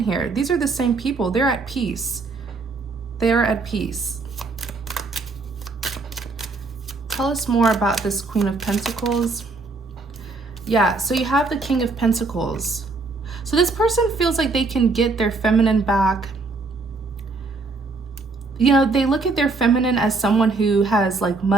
here. These are the same people. They're at peace. They are at peace. Tell us more about this Queen of Pentacles. Yeah, so you have the King of Pentacles. So this person feels like they can get their feminine back. You know, they look at their feminine as someone who has like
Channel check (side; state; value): left; quieter; 3.8 dB